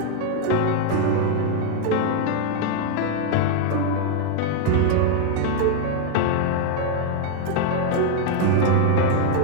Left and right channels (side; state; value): both; different; correlation 0.00